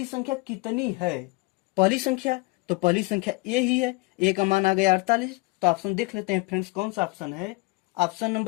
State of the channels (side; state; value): right; quieter; 24.0 dB